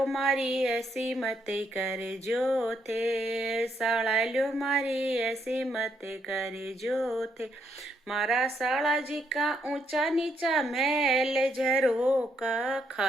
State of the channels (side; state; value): both; normal; correlation 0.75